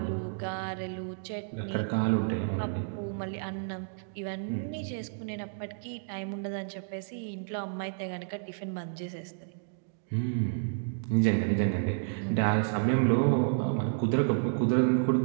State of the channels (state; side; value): silent; left; digital silence